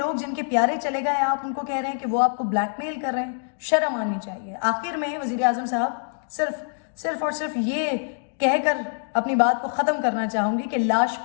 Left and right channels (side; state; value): right; silent; digital silence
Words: جن کے پیارے چلے گئے, آپ ان کو کہہ رہے ہیں کہ وہ آپ کو بلیک میل کر رہے ہیں. شرم آنی چاہیے. آخر میں وزیر اعظم صاحب صرف اور صرف یہ کہہ کر اپنی بات کو ختم کرنا چاہوں گی کہ لاش